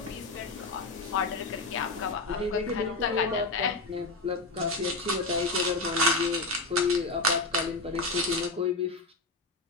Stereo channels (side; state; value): right; quieter; 3.1 dB